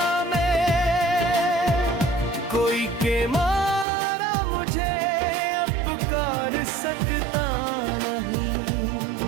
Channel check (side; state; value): left; drops out; at 3.9 s